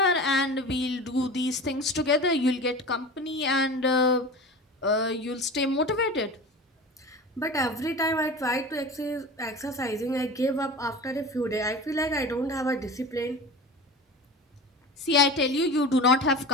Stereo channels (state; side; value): normal; both; correlation 0.33